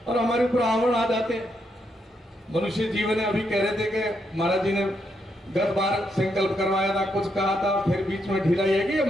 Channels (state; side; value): normal; both; correlation 0.79